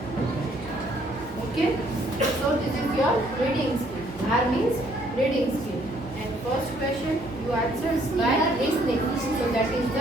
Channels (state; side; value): normal; both; correlation 0.65